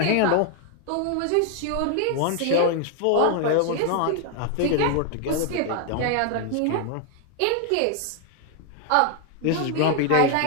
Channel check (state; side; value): different; both; correlation 0.00